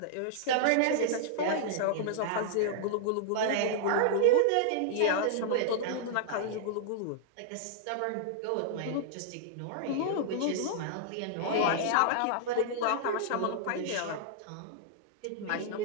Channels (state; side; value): different; both; correlation -0.01